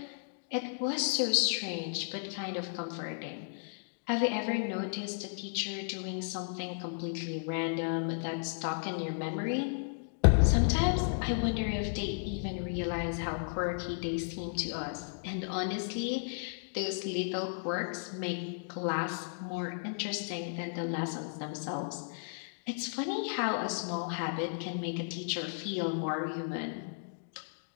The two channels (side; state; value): right; silent; digital silence